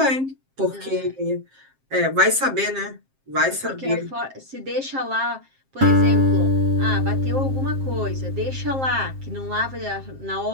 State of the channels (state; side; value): late; left; 7.5 ms